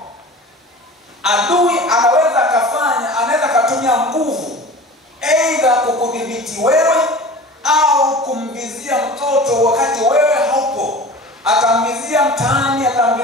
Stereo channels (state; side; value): normal; both; correlation 0.38